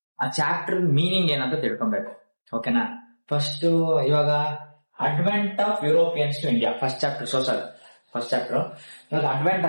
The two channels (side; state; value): both; inverted; correlation -1.00